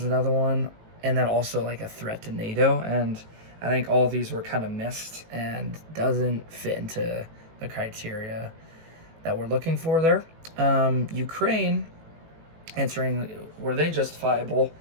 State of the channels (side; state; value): left; late; 18 ms